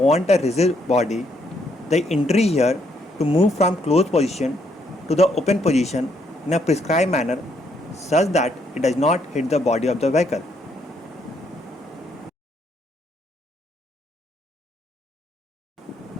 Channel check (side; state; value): both; normal; correlation 0.72